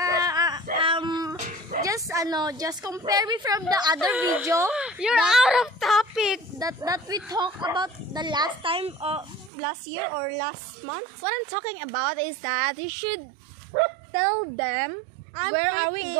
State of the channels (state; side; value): drops out; left; at 9.5 s